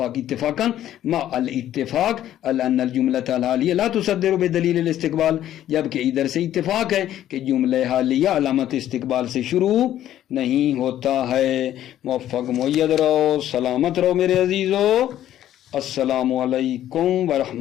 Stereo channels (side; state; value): right; quieter; 12.1 dB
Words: اتفاقا مع الاتفاق ان الجملۃ الحالیہ لا تصدر بدلیل الاستقبال، جبکہ ادھر سے اتفاق ہے کہ جملہ حالیہ علامت استقبال سے شروع نہیں ہوتا ہے۔ موفق مؤید رہو، سلامت رہو میرے عزیزو، السلام علیکم